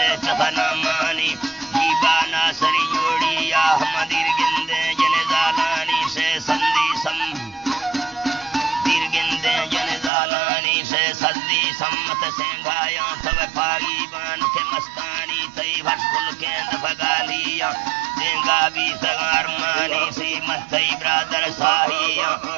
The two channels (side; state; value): left; drops out; at 10.1 s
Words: چفنامانی جیبانا سری جوڑی یا احمدیر گندے جن زالانی سے سندی سم دیر گندے جن زالانی سے سندی سمت سینگایا تب پاگی بان کے مستانی تی بھشکل کیند بگالیا دینگا بھی سگار مانی سی متی برادر ساہیا